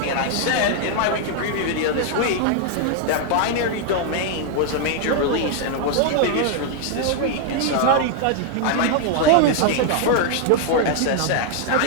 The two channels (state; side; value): different; both; correlation 0.00